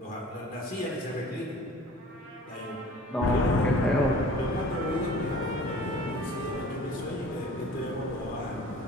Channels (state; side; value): normal; both; correlation 0.46